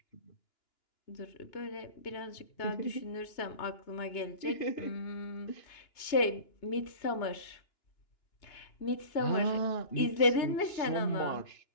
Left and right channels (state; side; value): late; right; 2.9 ms